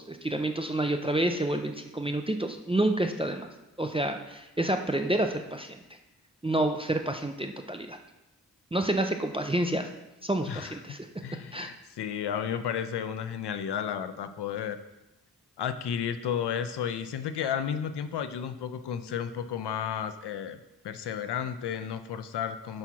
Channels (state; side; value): normal; both; correlation 0.49